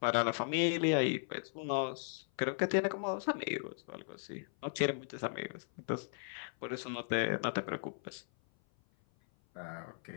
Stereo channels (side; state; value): right; silent; 53 dB below the other